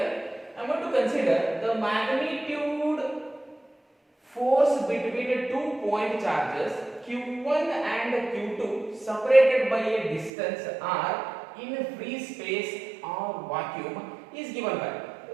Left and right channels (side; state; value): left; drops out; at 10.3 s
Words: I'm going to consider the magnitude force between two point charges Q1 and Q2 separated by a distance r in free space or vacuum is given by.